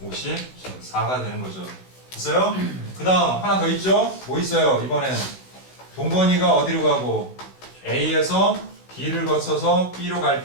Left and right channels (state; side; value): late; right; 16 ms